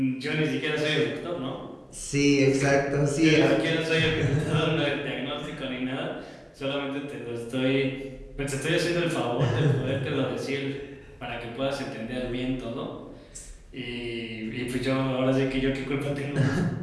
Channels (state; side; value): identical; both; correlation 1.00